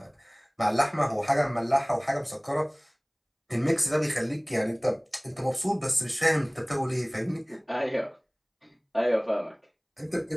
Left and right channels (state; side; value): identical; both; correlation 1.00